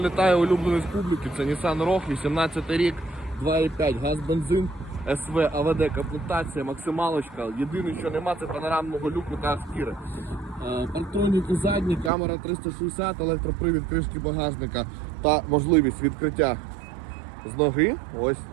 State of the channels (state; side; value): drops out; left; at 12.1 s